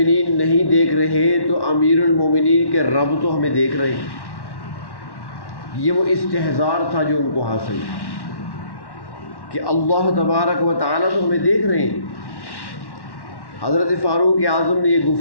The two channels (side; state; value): right; late; 1.1 ms